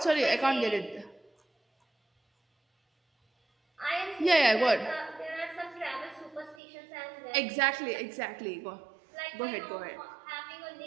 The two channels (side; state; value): left; drops out; at 6.6 s